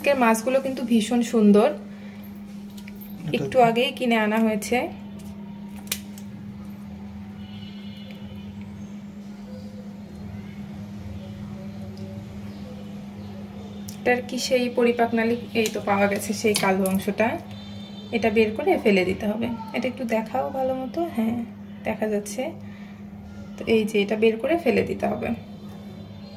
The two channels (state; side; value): identical; both; correlation 1.00